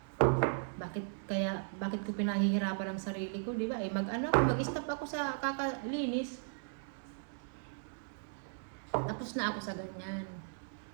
bakit ko pinahihirapan ang sarili ko, di ba? Mag-stop ako sa kakalinis. Tapos na ako sa ganyan.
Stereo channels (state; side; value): silent; left; digital silence